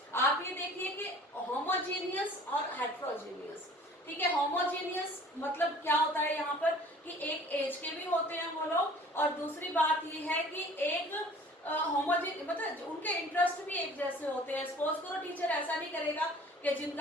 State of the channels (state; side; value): normal; both; correlation 0.49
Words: आप ये देखिए कि होमोजीनियस और हेट्रोजीनियस, ठीक है। होमोजीनियस मतलब क्या होता है यहाँ पर कि एक एज के भी होते हैं वो लोग, और दूसरी बात ये है कि एक मतलब उनके इंटरेस्ट भी एक जैसे होते हैं। सपोज करो टीचर ऐसा नहीं करेगा कि